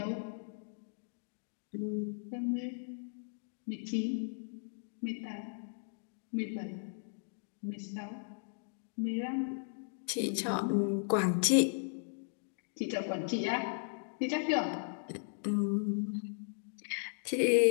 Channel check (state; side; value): silent; right; digital silence